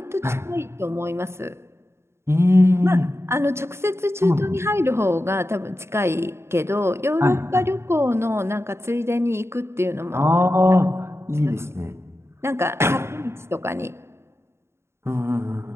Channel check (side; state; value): left; late; 0.13 ms